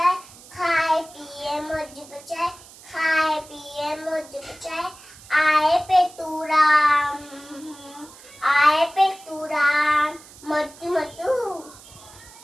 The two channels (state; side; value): noise; right; hiss, 21 dB below the sound